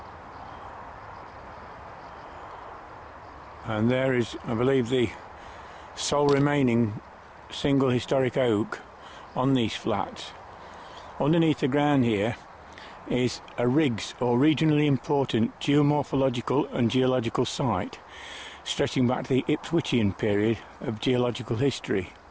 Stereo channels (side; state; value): both; identical; correlation 1.00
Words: And there is, I believe, the sole remaining single historic oak on these flats. Underneath the ground here is a RIGS, or Regionally Important Geomorphological and Geological Site, stretching back to the Ipswichian period of geological history.